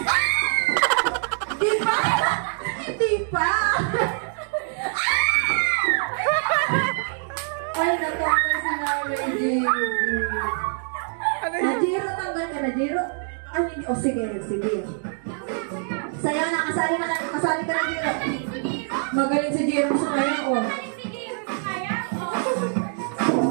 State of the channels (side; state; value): left; silent; 62 dB below the other